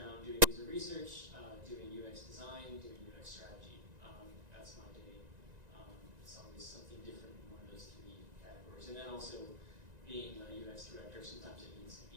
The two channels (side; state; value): left; late; 1.9 ms